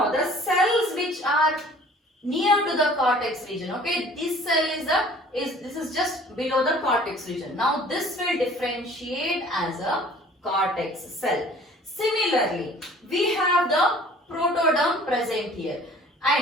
the cells which are near to the cortex region, okay, this cell this is just below the cortex region. Now, this will differentiate as a cortex cell. Similarly, we have the protoderm present here,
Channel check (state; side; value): normal; both; correlation 0.51